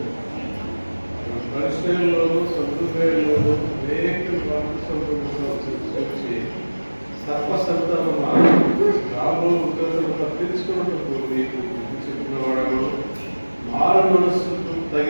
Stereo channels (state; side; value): inverted; both; correlation -1.00